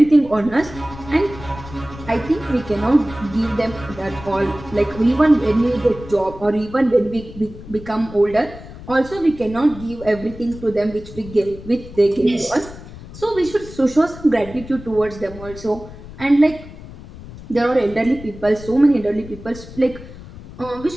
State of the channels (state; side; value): noise; left; rumble, 15 dB below the sound